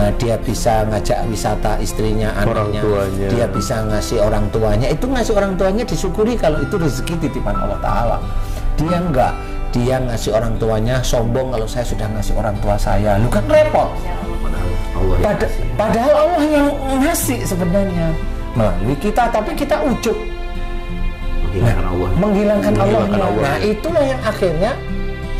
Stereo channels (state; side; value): identical; both; correlation 1.00